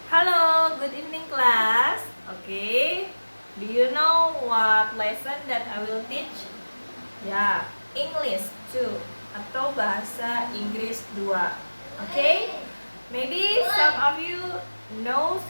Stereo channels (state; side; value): inverted; both; correlation -1.00